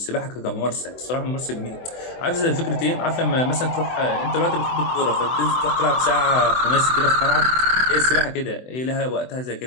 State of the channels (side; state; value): right; late; 24 ms